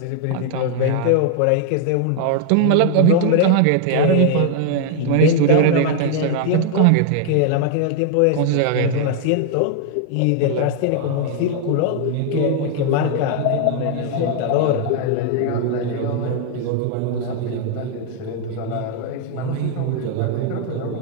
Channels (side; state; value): both; different; correlation 0.00